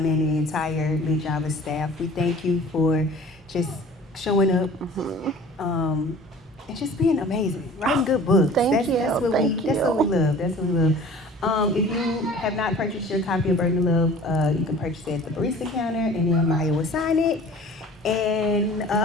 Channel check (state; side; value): normal; both; correlation 0.46